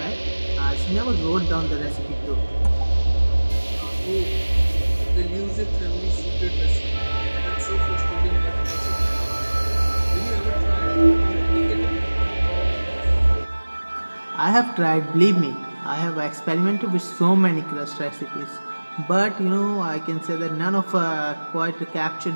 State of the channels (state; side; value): inverted; both; correlation -1.00